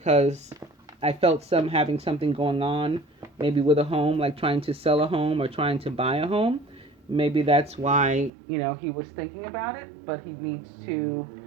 I felt having something going on, maybe with a home, like trying to sell a home or trying to buy a home. Maybe that's why, he was thinking about it, but he needs to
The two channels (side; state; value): left; drops out; at 8.3 s